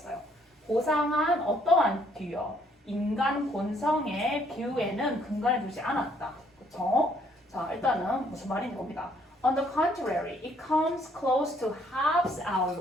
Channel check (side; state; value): both; normal; correlation 0.67